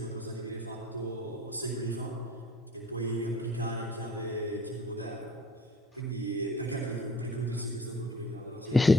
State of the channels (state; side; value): normal; both; correlation 0.49